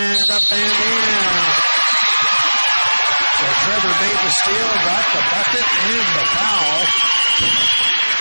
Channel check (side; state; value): both; inverted; correlation -1.00